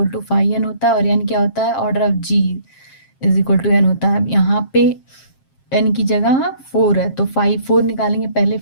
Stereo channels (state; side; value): late; right; 7.5 ms